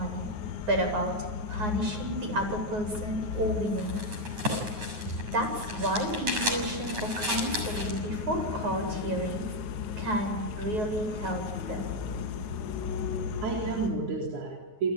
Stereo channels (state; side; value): late; left; 9.5 ms